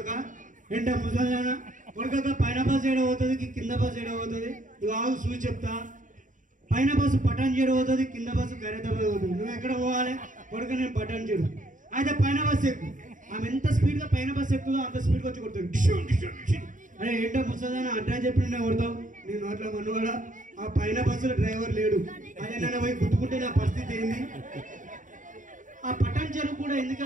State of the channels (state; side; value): late; left; 0.37 ms